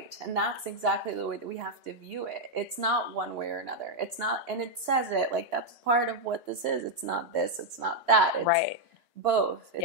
And that's exactly the way that we have to view it. It's not one way or another. It's not, and it says it, like, that's part of what this is. It's not this, it's not that. It's right. both.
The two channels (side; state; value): both; normal; correlation -0.01